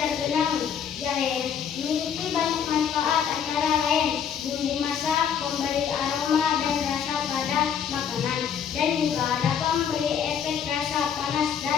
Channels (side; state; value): right; quieter; 7.9 dB